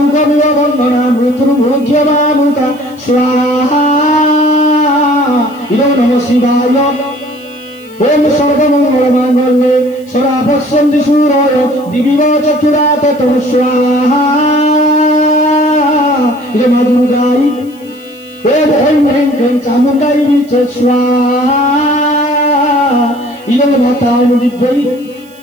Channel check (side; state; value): right; noise; hiss, 28 dB below the sound